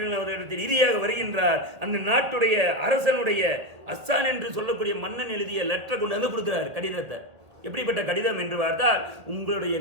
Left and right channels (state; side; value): late; left; 1.8 ms